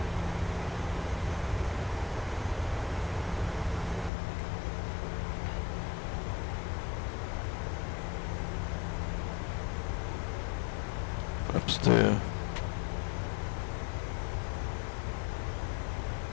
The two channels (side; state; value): right; drops out; at 4.1 s